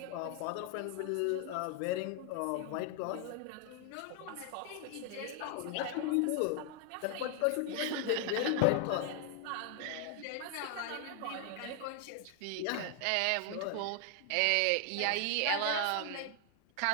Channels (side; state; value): both; different; correlation 0.00